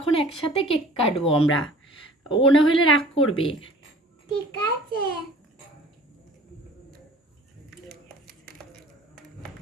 একসাথে কেক কাটবো আমরা। ও না হলে রাগ করবে। ঠিক আছে।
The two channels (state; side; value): normal; both; correlation 0.48